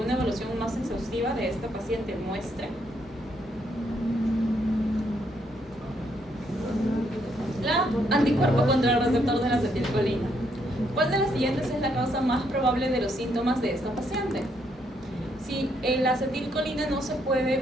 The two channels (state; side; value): normal; both; correlation 0.74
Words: evaluación más exhaustiva de esta paciente muestre? La anticuerpo contra el receptor de la acetilcolina. ¿Cuál de las siguientes es la causa más probable de los síntomas de esta paciente? Si la acetilcolina no se